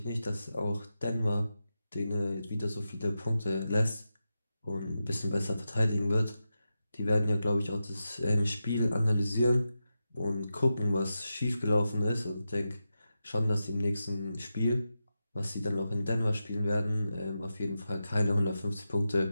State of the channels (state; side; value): inverted; both; correlation -0.90